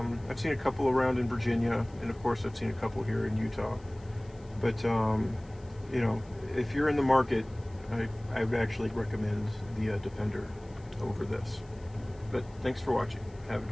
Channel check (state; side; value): noise; left; hiss, 29 dB below the sound